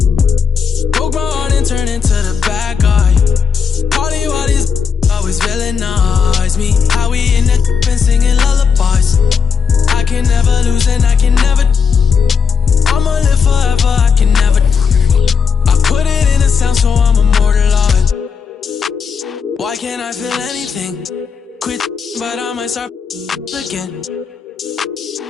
broke my heart and turn into the bad guy. Party while these always villainize me. How we in the and singing lullabies. I can never lose and I can never. I'ma live forever, I can never. I put it in a sound so I'm immortalized. Why can't I feel anything? Quit, but I might start again.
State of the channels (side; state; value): right; quieter; 6.2 dB